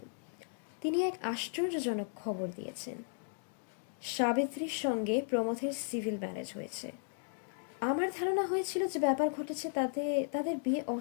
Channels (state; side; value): silent; right; 54 dB below the other